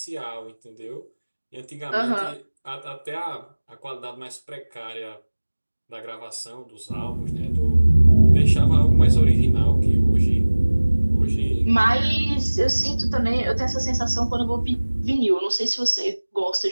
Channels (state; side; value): inverted; both; correlation -1.00